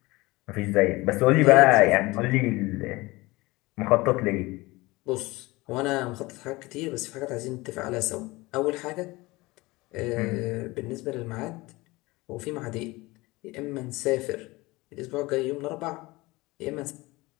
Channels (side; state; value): right; quieter; 21.7 dB